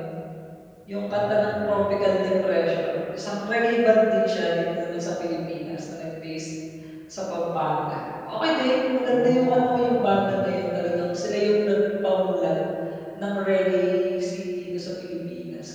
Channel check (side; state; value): both; identical; correlation 1.00